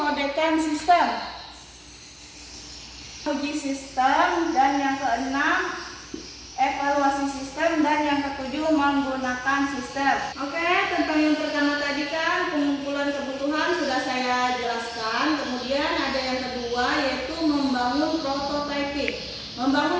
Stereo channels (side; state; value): both; identical; correlation 1.00